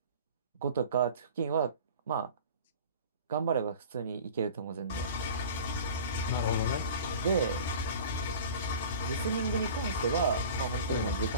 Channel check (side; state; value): both; inverted; correlation -0.40